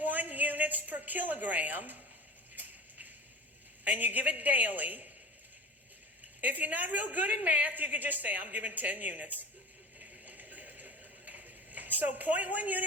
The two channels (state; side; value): normal; both; correlation 0.34